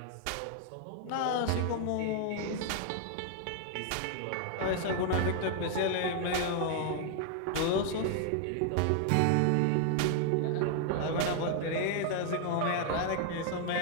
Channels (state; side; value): different; both; correlation 0.00